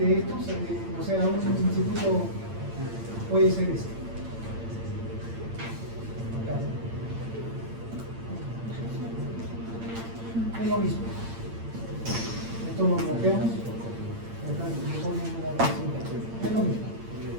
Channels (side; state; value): left; late; 8.8 ms